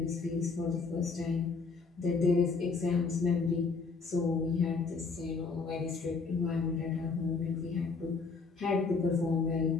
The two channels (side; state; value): right; quieter; 4.6 dB